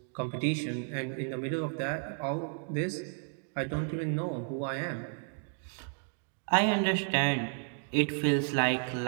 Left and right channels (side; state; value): left; silent; 56 dB below the other